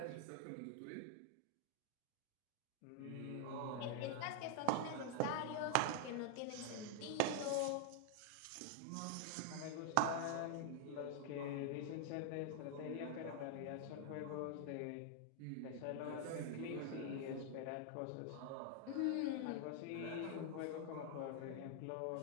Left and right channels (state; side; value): different; both; correlation 0.00